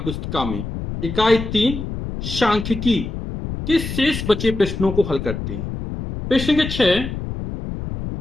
में इकाई 3 सांख्यिकी के शेष बचे प्रश्नों को हल करते हैं। प्रश्न के 6,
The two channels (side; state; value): left; noise; rumble, 6 dB below the sound